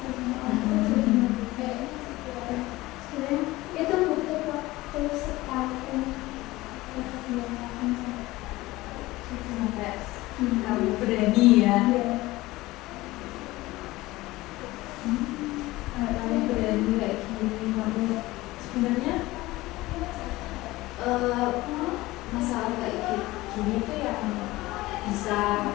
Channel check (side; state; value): right; quieter; 19.0 dB